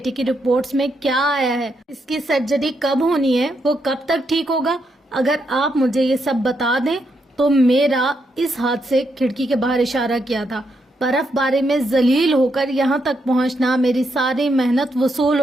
کی رپورٹس میں کیا آیا ہے؟ اس کی سرجری کب ہونی ہے؟ وہ کب تک ٹھیک ہوگا؟ اگر آپ مجھے یہ سب بتا دیں تو میرا اس ہاتھ سے کھڑکی کے باہر اشارہ کیا تھا. برف باری میں ذلیل ہو کر یہاں تک پہنچنا, میری ساری محنت وصول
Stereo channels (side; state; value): both; normal; correlation 0.80